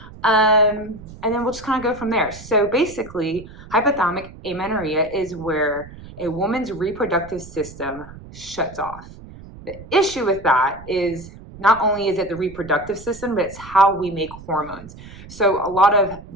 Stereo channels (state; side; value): noise; right; rumble, 17 dB below the sound